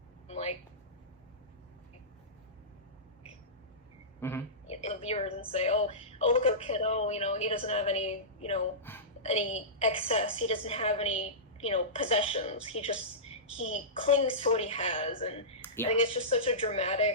like, the viewers and say, oh, look at our kid, he doesn't have any, any excess, he doesn't have any, possessions, he clings to what he has, and yeah. I think it's just such a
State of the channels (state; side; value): normal; both; correlation -0.19